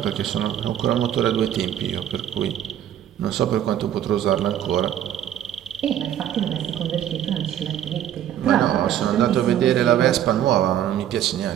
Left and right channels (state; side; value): quieter; left; 10.7 dB